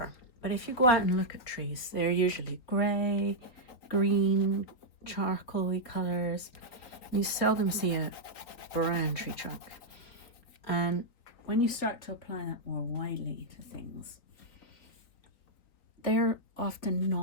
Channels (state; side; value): late; right; 4.1 ms